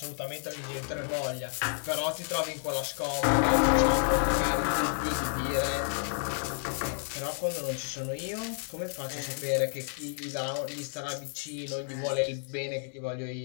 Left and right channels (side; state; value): right; silent; 57 dB below the other